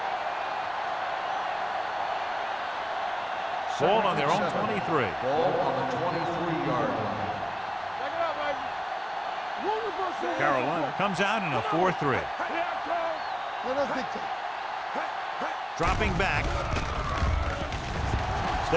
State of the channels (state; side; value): identical; both; correlation 1.00